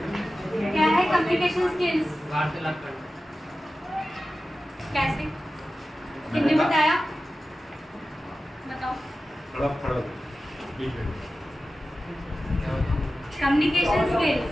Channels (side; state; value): both; normal; correlation 0.94